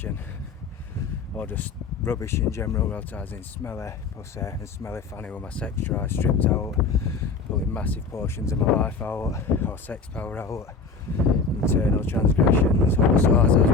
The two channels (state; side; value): quieter; right; 4.5 dB